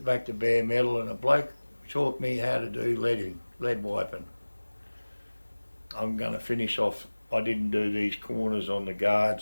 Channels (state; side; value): inverted; both; correlation -1.00